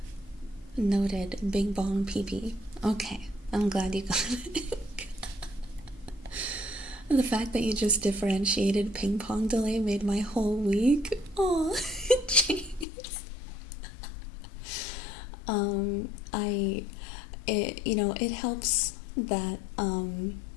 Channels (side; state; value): right; drops out; at 12.9 s